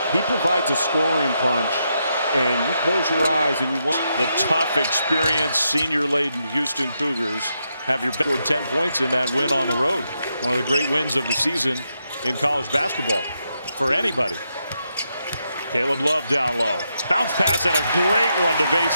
He provides a scoring punch, and you close your eyes and you want the tough, experienced, senior-laden Houston Cougars have your scored 10 points in that win on the road. One of the great wins of the season in college basketball for anybody. Caleb Love down low. Bounce pass and a great one to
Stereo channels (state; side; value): inverted; both; correlation -0.82